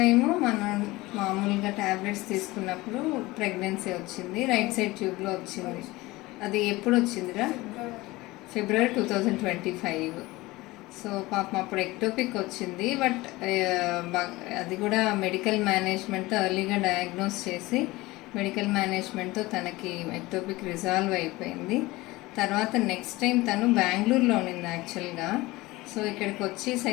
మనం మామూలుగా ట్యాబ్లెట్స్ తీసుకున్నప్పుడు ప్రెగ్నెన్సీ వచ్చింది, రైట్ సైడ్ ట్యూబ్లో వచ్చింది. అది ఎప్పుడు వచ్చిందిరా? ఫిబ్రవరి 2025. సో పాపం అప్పుడు ఎక్టోపిక్ వచ్చింది. బట్ అది కూడా మెడికల్ మేనేజ్మెంట్తో ఎర్లీగా డయాగ్నోస్ చేసి మెడికల్ మేనేజ్మెంట్తో తనకి ఎక్టోపిక్ రిజాల్వ్ అయిపోయింది. తర్వాత నెక్స్ట్ టైం తను బెంగళూరులో ఉన్నింది యాక్చువల్గా. సో ఇక్కడికి వచ్చి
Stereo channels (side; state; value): right; quieter; 20.3 dB